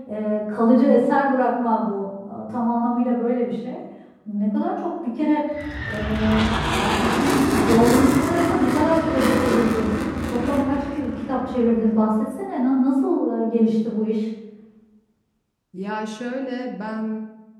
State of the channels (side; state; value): both; identical; correlation 1.00